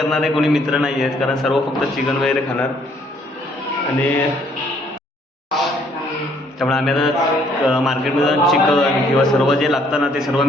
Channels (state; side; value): normal; both; correlation 0.65